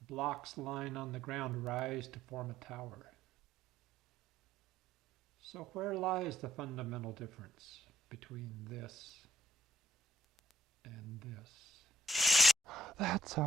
blocks lying on the ground rise to form a tower. So where lies the fundamental difference between this and this? That's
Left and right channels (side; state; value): both; normal; correlation 0.68